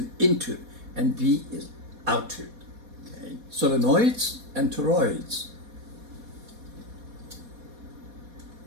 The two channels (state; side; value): late; left; 4.2 ms